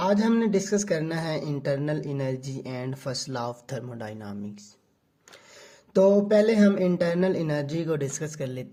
हमने डिस्कस करना है internal energy and first law of thermodynamics. तो पहले हम इंटरनल एनर्जी को डिस्कस कर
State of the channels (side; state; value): both; identical; correlation 1.00